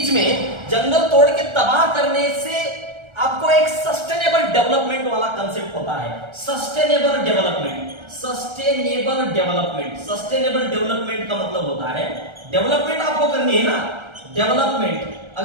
में जंगल तोड़ के तबाह करने से आपको एक सस्टेनेबल डेवलपमेंट वाला कंसेप्ट होता है। Sustainable development, sustainable development, sustainable development का मतलब होता है, डेवलपमेंट आपको करनी है ना, डेवलपमेंट।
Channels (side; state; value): left; late; 1.3 ms